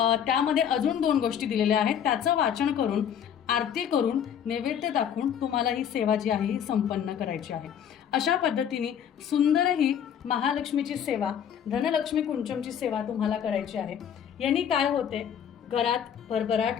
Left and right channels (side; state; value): right; quieter; 8.7 dB